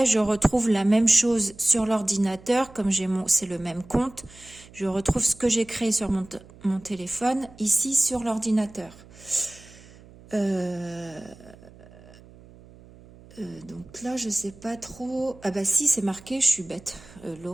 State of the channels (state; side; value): noise; right; hum, 22 dB below the sound